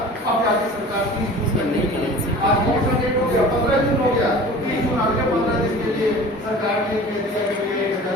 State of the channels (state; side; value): normal; both; correlation 0.41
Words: अब जाके सरकार 30 जून तक नहीं करेगी। आज कौन सा डेट हो गया, 15 जून हो गया, तो 30 जून अगले 15 दिन के लिए सरकार ने कह दिया कि